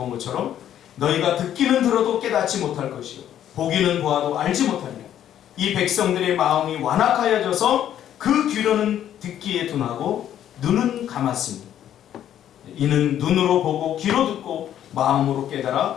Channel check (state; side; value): quieter; right; 10.8 dB